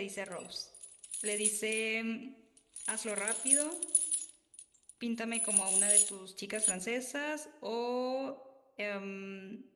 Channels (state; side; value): identical; both; correlation 1.00